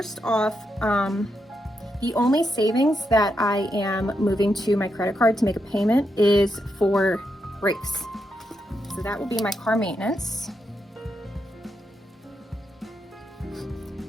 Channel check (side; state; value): both; normal; correlation 0.83